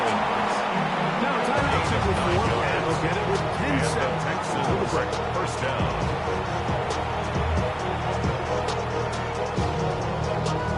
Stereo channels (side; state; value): both; identical; correlation 1.00